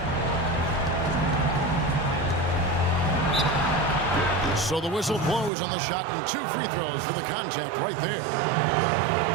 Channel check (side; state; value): left; drops out; at 5.5 s